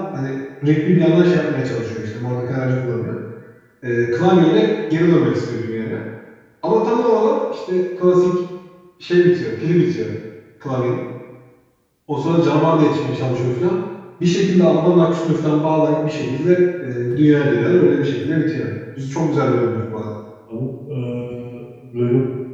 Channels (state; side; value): identical; both; correlation 1.00